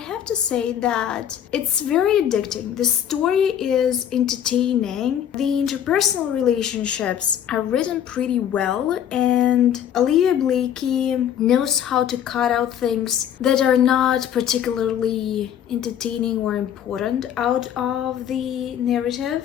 to say that it's very addicting. The story is entertaining, the interpersonal relationships are written pretty well, and Olivia Blake knows how to cut out things that are not particularly entertaining or important out of the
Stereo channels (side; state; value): right; quieter; 9.7 dB